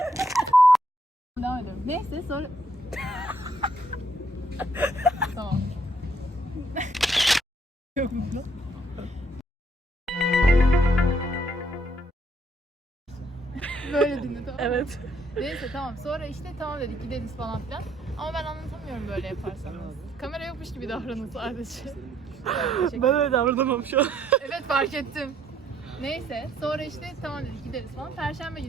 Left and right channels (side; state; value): both; normal; correlation 0.68